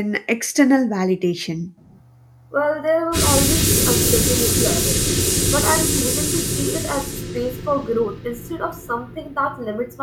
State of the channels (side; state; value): both; identical; correlation 1.00